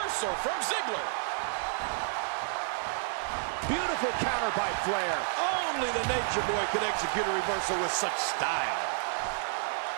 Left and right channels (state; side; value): silent; left; 57 dB below the other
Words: from Ziggler. Beautiful counter by Flair. Only the Nature Boy could execute a reversal with such style.